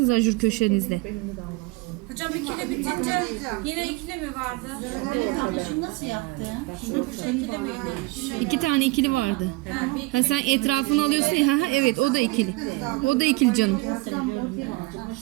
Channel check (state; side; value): quieter; left; 23.0 dB